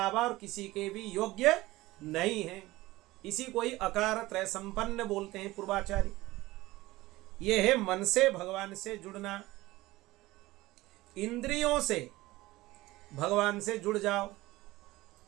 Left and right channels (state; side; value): quieter; left; 18.7 dB